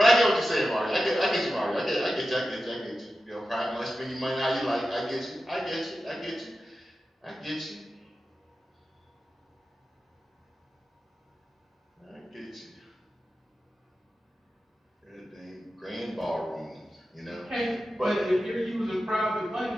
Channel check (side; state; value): both; normal; correlation 0.93